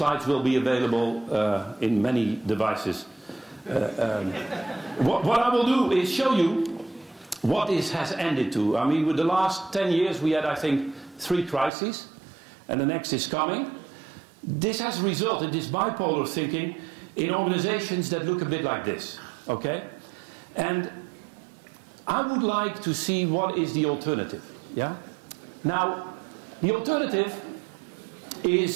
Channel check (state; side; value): drops out; left; at 11.7 s